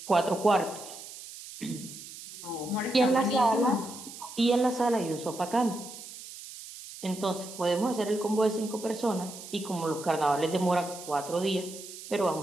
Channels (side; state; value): right; noise; hiss, 14 dB below the sound